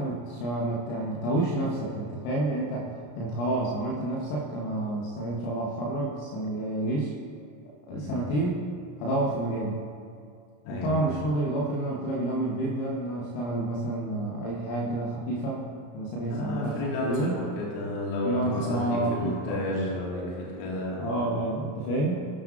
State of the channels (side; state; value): right; late; 33 ms